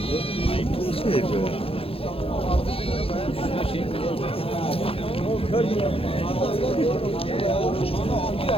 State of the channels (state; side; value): late; right; 0.27 ms